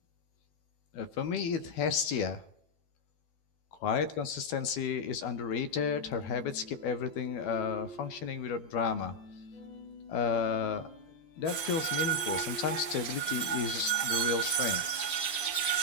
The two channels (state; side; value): late; right; 12 ms